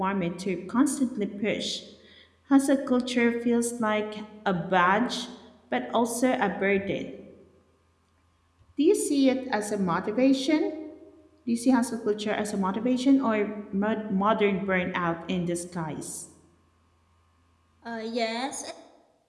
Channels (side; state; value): both; identical; correlation 1.00